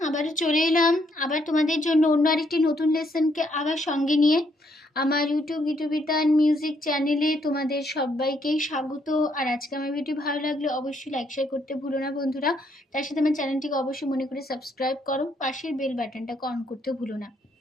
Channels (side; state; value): both; normal; correlation 0.72